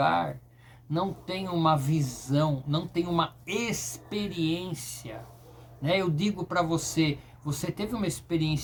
não tem uma visão, não tem uma experiência, né? Eu digo para você, você teve uma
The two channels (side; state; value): both; identical; correlation 1.00